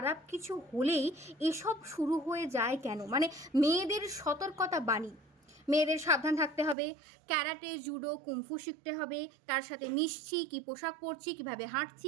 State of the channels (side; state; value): left; drops out; at 6.8 s